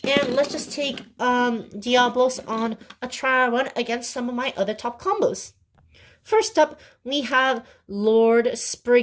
And let's just take Diablos on a trial run against some of my other top combos. First up, we have Lord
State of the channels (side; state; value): both; identical; correlation 1.00